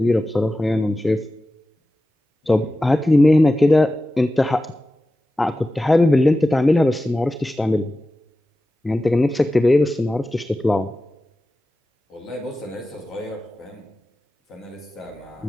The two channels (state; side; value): normal; both; correlation 0.94